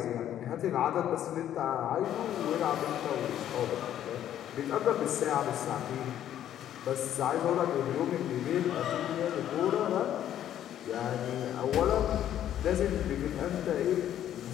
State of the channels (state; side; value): quieter; right; 11.1 dB